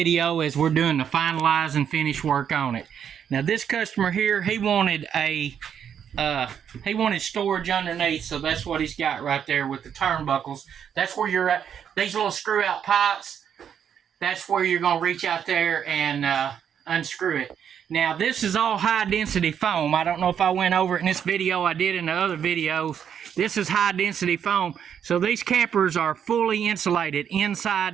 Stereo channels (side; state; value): left; quieter; 8.4 dB